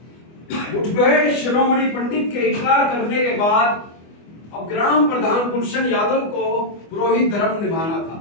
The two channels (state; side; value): late; right; 24 ms